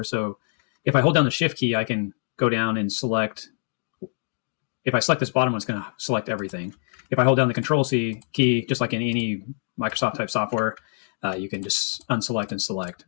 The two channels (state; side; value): silent; right; 62 dB below the other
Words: So if I hold down the shift key, I can go down and select. If I select this bottom one, it's going to select everything. If I hold down the Control C key, just like in any Microsoft type software, you can just unselect and select